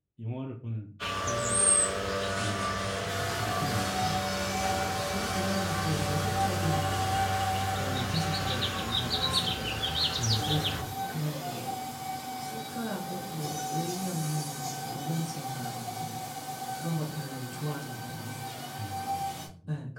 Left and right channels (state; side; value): identical; both; correlation 1.00